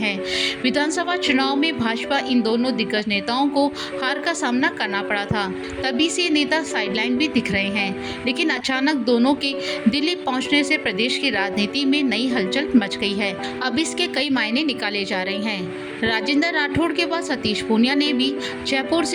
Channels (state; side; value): identical; both; correlation 1.00